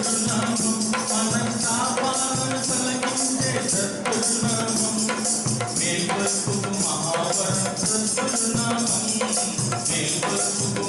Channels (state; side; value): identical; both; correlation 1.00